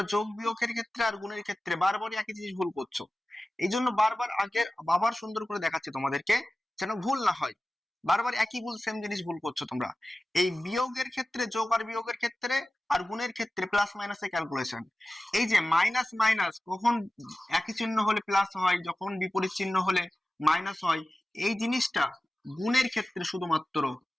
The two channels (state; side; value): normal; both; correlation 0.95